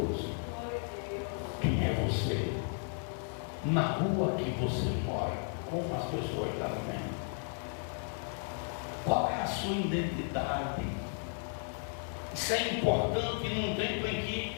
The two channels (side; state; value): right; silent; 55 dB below the other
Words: Quem é você? Na rua que você mora, como as pessoas estão vendo? Qual é a sua identidade? Isso é importante num tempo em